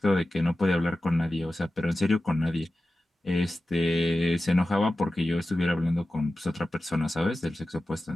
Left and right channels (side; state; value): both; normal; correlation 0.94